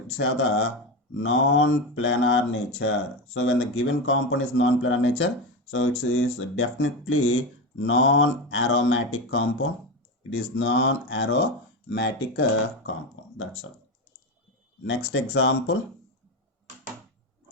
have the non-planar nature. So when the given compound is non-planar nature, so it is definitely non-aromatic compound. It is non-aromatic compound. That's all. Next example.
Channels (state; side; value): normal; both; correlation 0.17